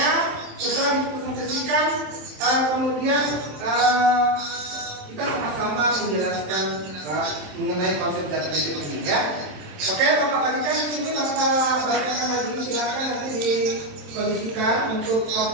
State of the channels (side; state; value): left; late; 27 ms